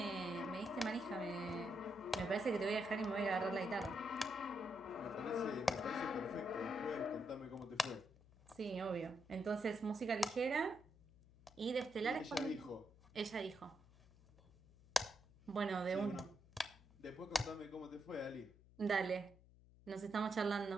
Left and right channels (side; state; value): left; noise; hum, 24 dB below the sound